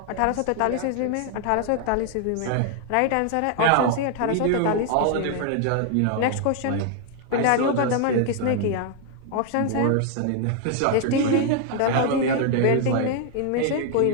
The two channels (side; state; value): both; different; correlation 0.00